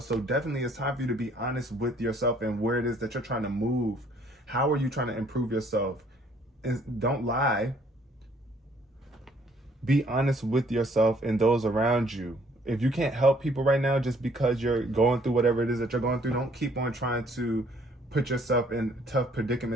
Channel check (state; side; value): normal; both; correlation 0.62